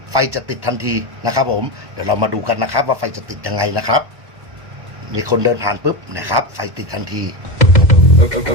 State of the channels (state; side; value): late; left; 1.1 ms